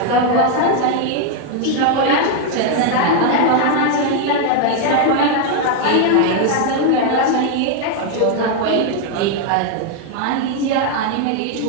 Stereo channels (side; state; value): both; different; correlation 0.01